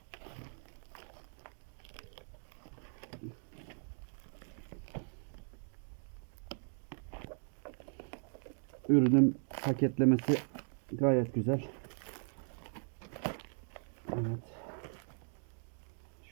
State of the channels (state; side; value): silent; left; 52 dB below the other